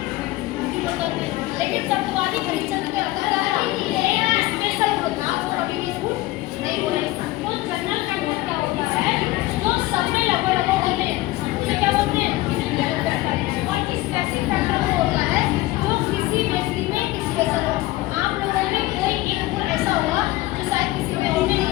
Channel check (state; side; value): quieter; right; 18.4 dB